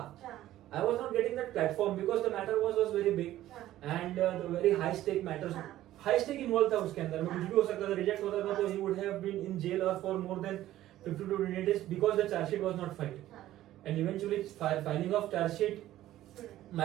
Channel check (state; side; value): quieter; left; 14.0 dB